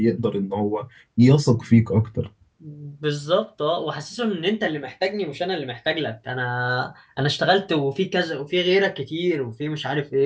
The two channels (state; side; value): identical; both; correlation 1.00